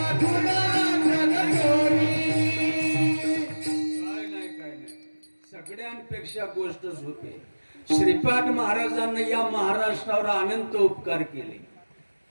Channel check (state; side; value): inverted; both; correlation -1.00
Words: सगळ्यांपेक्षा गोष्ट होते. श्रीपाद महाराजांना या महाराष्ट्रावर अनंत उपकार केले.